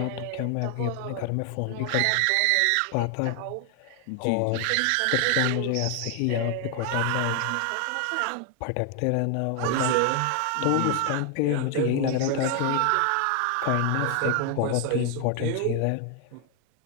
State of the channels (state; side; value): different; both; correlation 0.00